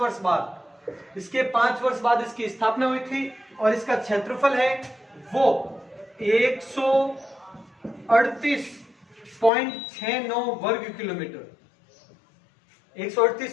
बाद, इसके 5 वर्ष बाद इसकी स्थापना हुई थी। और इसका क्षेत्रफल है वो 138.69 वर्ग किलोमीटर,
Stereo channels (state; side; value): drops out; right; at 9.5 s